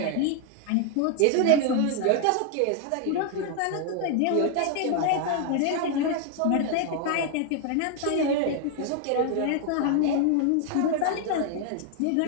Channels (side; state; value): both; different; correlation 0.00